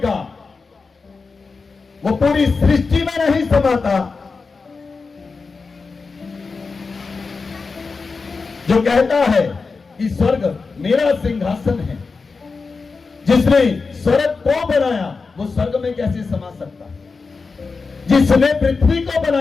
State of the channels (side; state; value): right; quieter; 4.5 dB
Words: वो पूरी सृष्टि में नहीं समाता। जो कहता है कि स्वर्ग मेरा सिंहासन है जिसने स्वर्ग को बनाया वो स्वर्ग में कैसे समा सकता है? जिसने पृथ्वी को